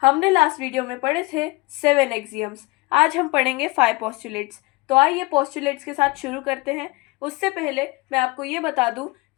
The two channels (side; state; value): right; quieter; 24.0 dB